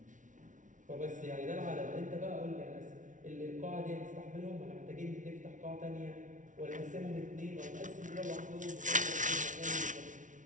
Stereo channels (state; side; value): late; left; 0.37 ms